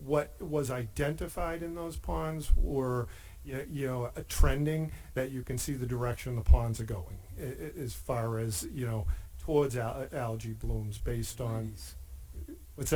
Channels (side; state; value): both; identical; correlation 1.00